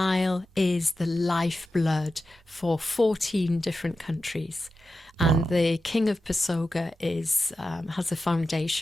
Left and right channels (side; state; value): both; normal; correlation 0.91